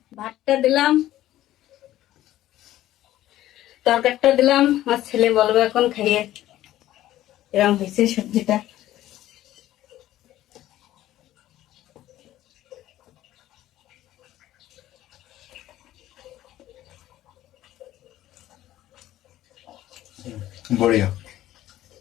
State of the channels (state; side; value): quieter; right; 14.1 dB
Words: ভাতটা দিলাম, তরকারিটা দিলাম। আমার ছেলে বলবে এখন খাইয়ে এরকম হয়েছে সবজিটা। बढ़िया।